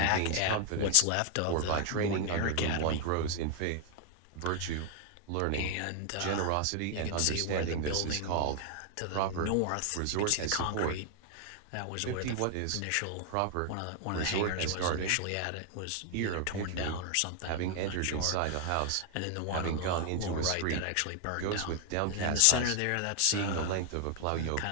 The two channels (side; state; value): both; different; correlation 0.00